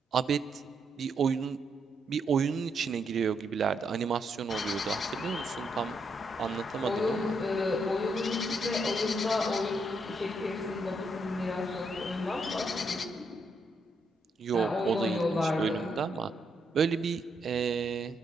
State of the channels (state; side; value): normal; both; correlation 0.78